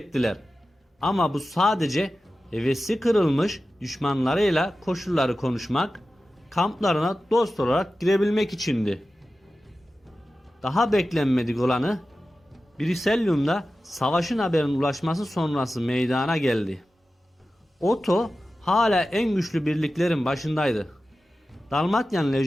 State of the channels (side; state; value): both; normal; correlation 0.94